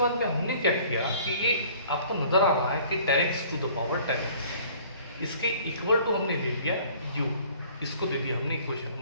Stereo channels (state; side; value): inverted; both; correlation -0.52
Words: में हमने क्या किया कि ये आपको नजर आ रहा है कि 10x to the power 10x, इसके इक्वल टू हमने ले लिया u, इसको दे दिया हमने इक्वेशन